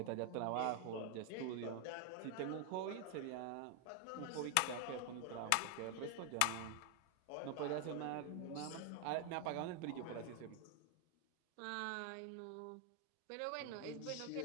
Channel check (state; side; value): different; both; correlation 0.00